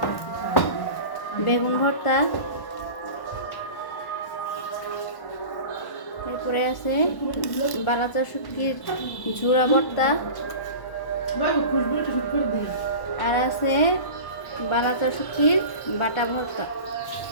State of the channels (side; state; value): right; late; 1.1 ms